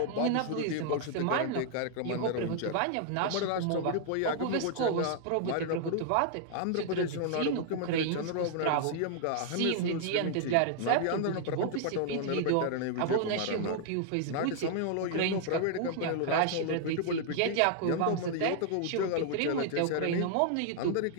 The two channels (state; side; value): different; both; correlation 0.00